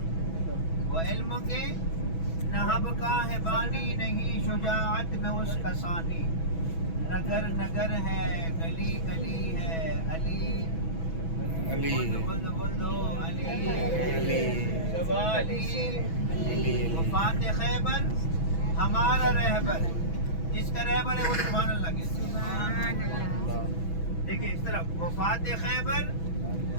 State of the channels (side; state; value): right; late; 6.1 ms